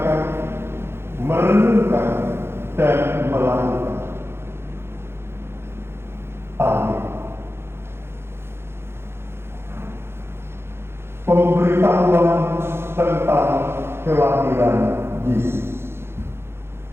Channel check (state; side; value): late; left; 0.12 ms